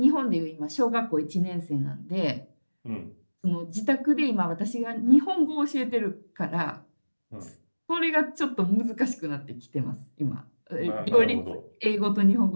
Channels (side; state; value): both; inverted; correlation -1.00